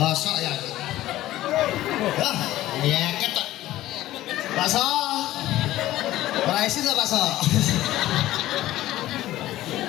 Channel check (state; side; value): quieter; right; 15.1 dB